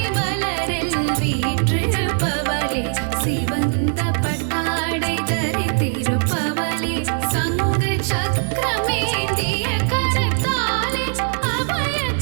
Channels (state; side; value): silent; left; 65 dB below the other